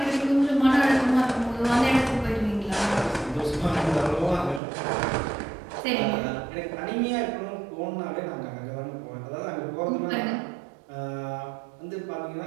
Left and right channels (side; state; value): left; drops out; at 4.6 s